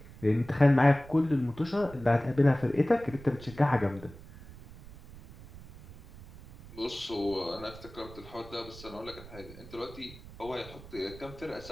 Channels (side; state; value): right; noise; rumble, 18 dB below the sound